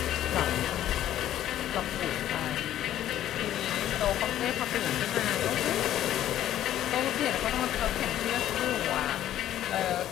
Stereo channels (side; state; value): right; quieter; 12.2 dB